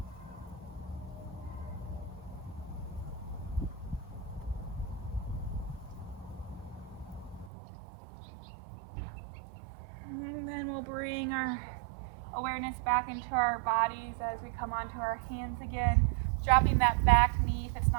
And then we'll bring our awareness back into our bodies as we come onto our hands again. Dropping that back knee if it's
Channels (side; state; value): left; drops out; at 7.5 s